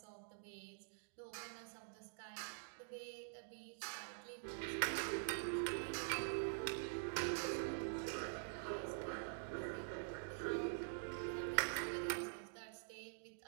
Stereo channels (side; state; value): left; silent; digital silence